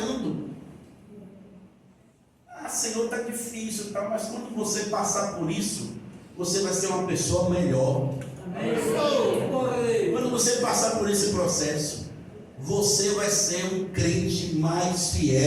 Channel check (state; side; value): identical; both; correlation 1.00